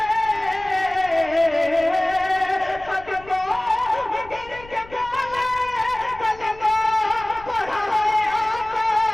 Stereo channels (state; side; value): noise; left; rumble, 21 dB below the sound